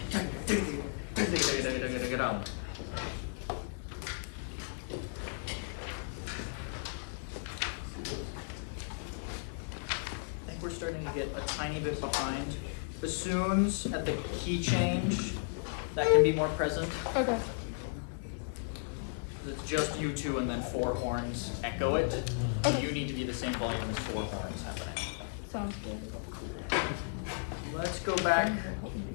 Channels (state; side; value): silent; right; 55 dB below the other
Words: I think we're starting to get a tiny bit behind. Bassoons at the key change, that can be more present. Okay. It's just you two and then four horns echo it. Okay. You need to be the same volume as four horns happening. Sounds good. Let's go back